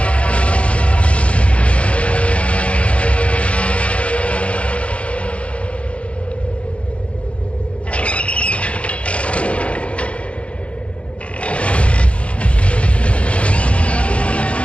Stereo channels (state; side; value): late; right; 0.062 ms